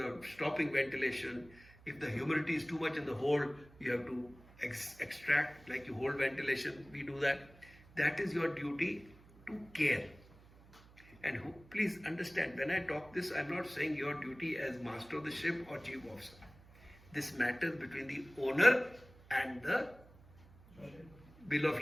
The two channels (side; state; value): right; noise; hum, 23 dB below the sound